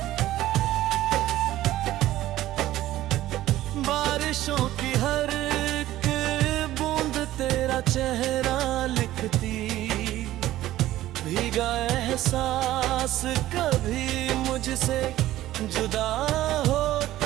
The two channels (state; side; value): quieter; left; 14.7 dB